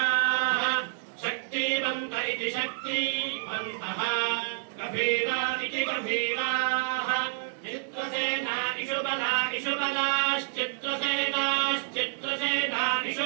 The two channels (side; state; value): left; silent; digital silence